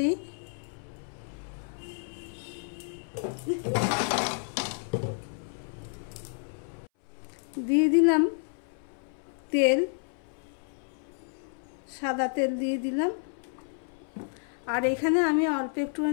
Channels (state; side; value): silent; right; 57 dB below the other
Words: দিয়ে দিলাম তেল, সাদা তেল দিয়ে দিলাম। আর এখানে আমি অল্প